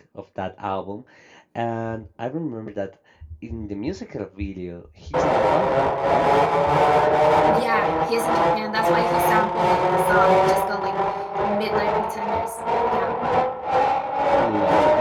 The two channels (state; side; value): identical; both; correlation 1.00